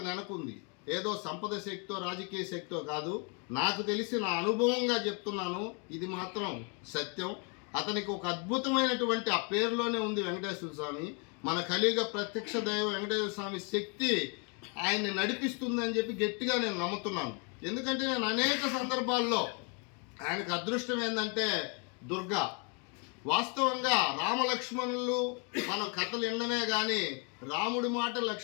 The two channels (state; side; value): quieter; right; 35.7 dB